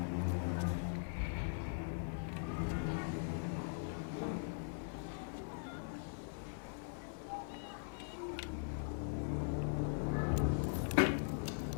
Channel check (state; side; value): silent; right; digital silence